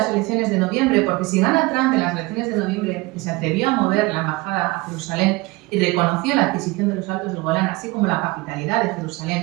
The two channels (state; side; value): quieter; left; 22.4 dB